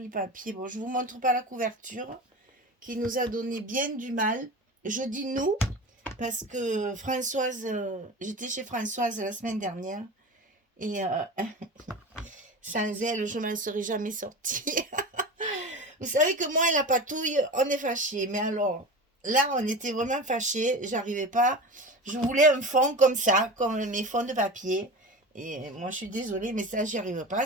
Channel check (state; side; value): normal; both; correlation 0.30